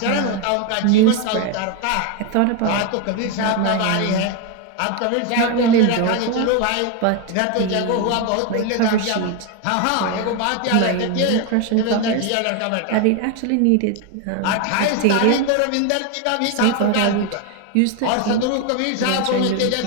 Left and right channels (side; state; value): both; different; correlation 0.01